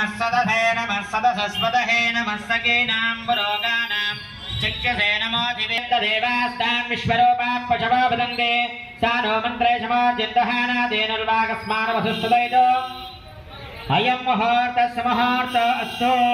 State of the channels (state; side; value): identical; both; correlation 1.00